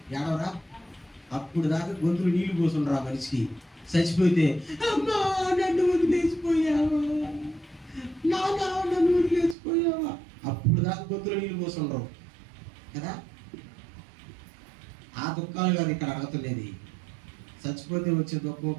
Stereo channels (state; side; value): drops out; left; at 9.6 s